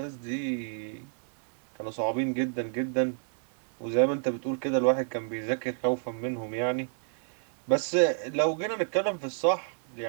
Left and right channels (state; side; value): silent; left; 58 dB below the other